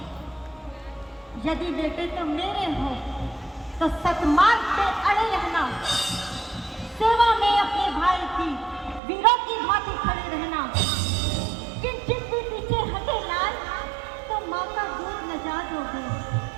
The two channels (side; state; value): left; drops out; at 9.0 s